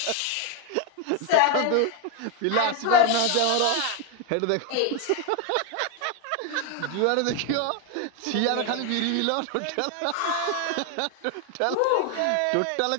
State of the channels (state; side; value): different; both; correlation 0.01